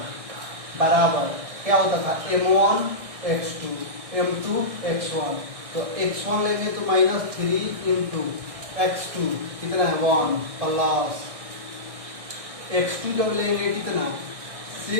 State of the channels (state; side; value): late; left; 1.6 ms